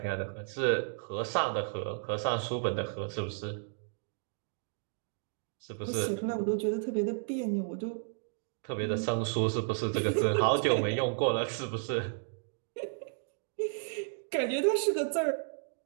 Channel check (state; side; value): silent; left; digital silence